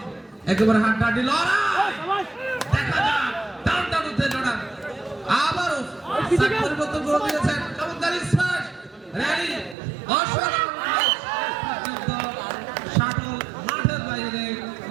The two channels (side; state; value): left; drops out; at 9.8 s